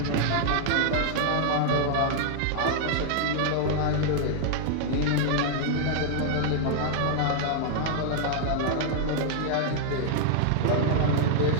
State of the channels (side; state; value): both; different; correlation 0.00